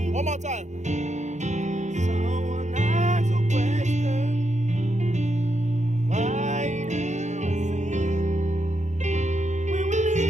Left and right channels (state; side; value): late; left; 0.34 ms